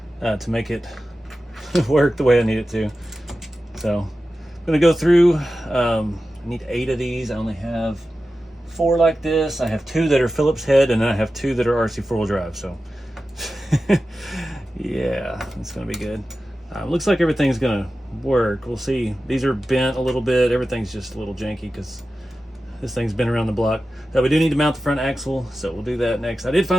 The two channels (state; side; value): normal; both; correlation 0.93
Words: To make it work the way I need it to. So I'm gonna go through, I need 8 of these. I only have 4 like this. I have 2 that are Phillips head, and then I have 2 that are RC4 drive. So yeah, it's gonna be good. Looks like everything's gonna work. We'll see. These are bent a little bit. Everything's just a little janky because this thing's been around the block. Now we do need to mount the front axle, so we'll do that next. I did